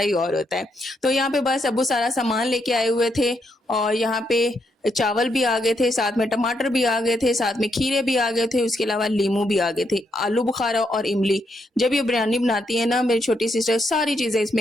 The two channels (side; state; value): both; normal; correlation 0.78